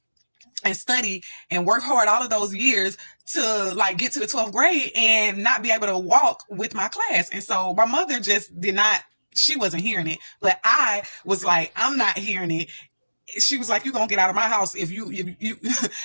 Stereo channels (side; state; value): both; inverted; correlation -1.00